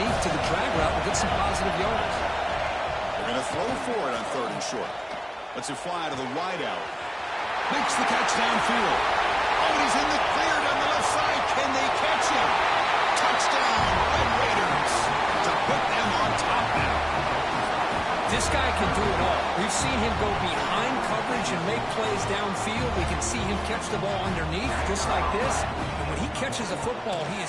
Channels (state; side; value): identical; both; correlation 1.00